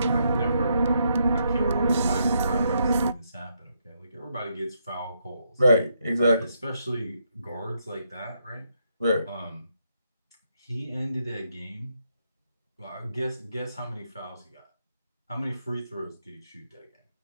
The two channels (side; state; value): both; inverted; correlation -0.77